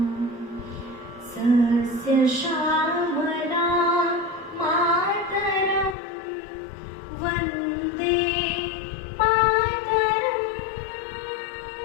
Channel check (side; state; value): right; drops out; at 6.0 s